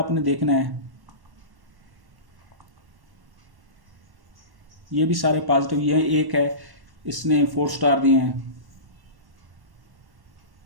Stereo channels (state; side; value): late; left; 1.1 ms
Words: देखना है। ये भी सारे पॉजिटिव, ये एक है इसने 4 स्टार दिए हैं।